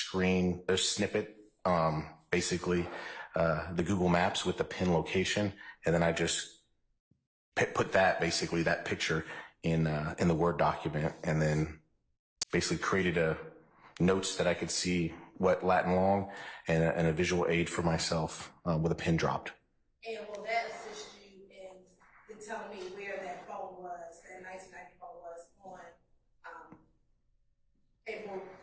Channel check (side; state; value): both; identical; correlation 1.00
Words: basically, the Google Maps with the pin location. And then I just put that picture in the Word document, and then basically created notes that I could see what Latin long and a visual aid for myself with a pin dropped. And will that assist you in telling me where that phone was, that 1990 phone was on between April